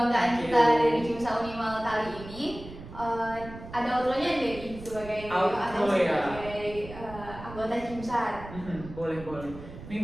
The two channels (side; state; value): right; noise; rumble, 14 dB below the sound